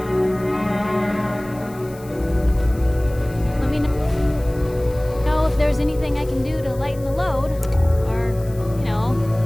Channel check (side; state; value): left; noise; hiss, 22 dB below the sound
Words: Let me know if there's anything I can do to lighten the load. Or, you know,